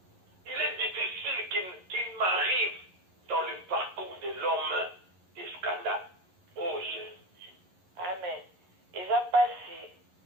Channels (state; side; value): late; left; 11 ms